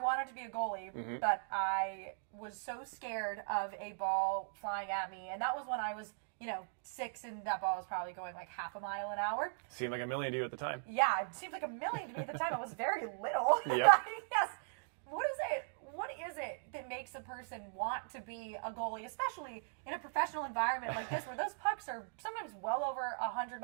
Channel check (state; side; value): silent; left; digital silence